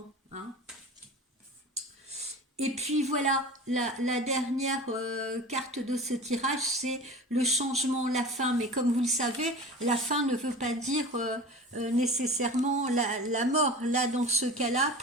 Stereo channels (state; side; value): normal; both; correlation 0.36